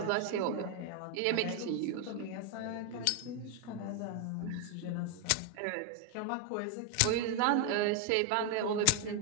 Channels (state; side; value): different; both; correlation 0.01